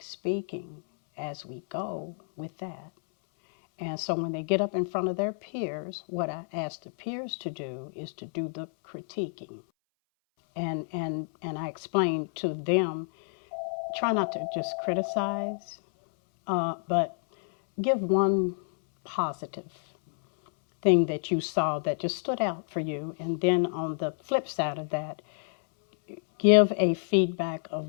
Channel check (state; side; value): silent; right; 59 dB below the other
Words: speaking as we go with that. And so when they get up in front of their peers, what I asked the peers to do is to do the critiquing. And I explained to them, try not to just criticize, but give one positive thing that you saw that just stood out for you. And then on the flip side of that, give a feedback of